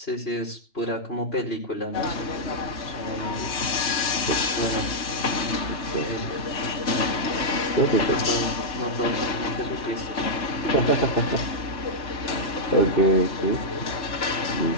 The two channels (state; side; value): late; right; 3.0 ms